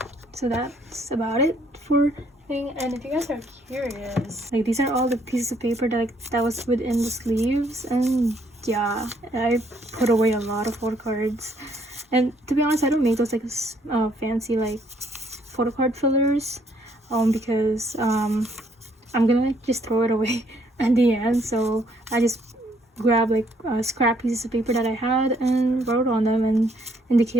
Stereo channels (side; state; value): both; normal; correlation 0.67